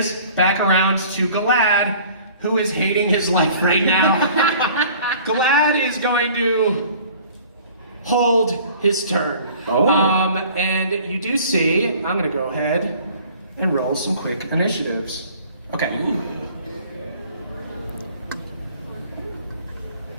back around to Galad, who is hating his life right now. Galad is going to hold his turn. And you do see, I'm gonna go ahead and roll some quick initiatives. Okay.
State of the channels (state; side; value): inverted; both; correlation -0.50